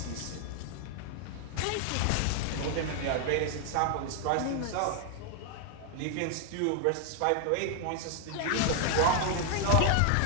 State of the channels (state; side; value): different; both; correlation 0.00